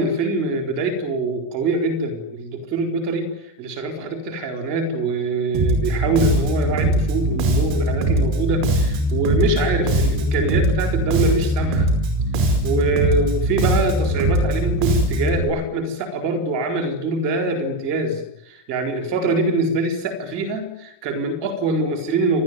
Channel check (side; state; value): left; late; 1.9 ms